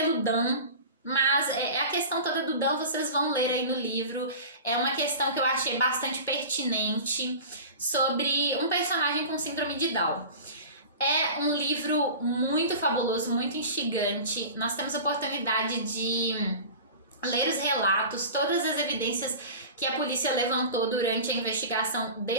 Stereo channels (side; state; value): both; inverted; correlation -0.35